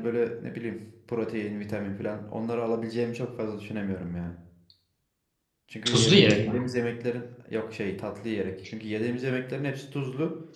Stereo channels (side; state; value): both; identical; correlation 1.00